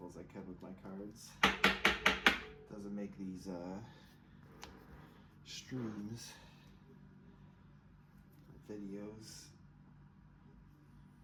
as I can with my cards. Doesn't make these streams or videos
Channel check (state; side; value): identical; both; correlation 1.00